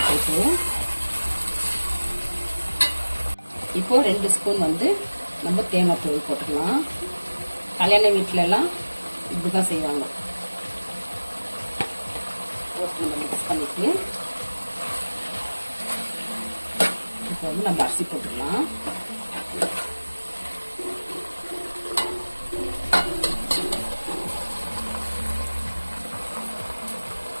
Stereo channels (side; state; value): both; inverted; correlation -1.00